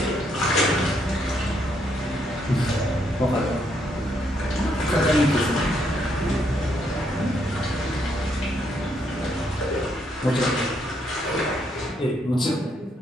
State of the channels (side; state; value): both; normal; correlation 0.74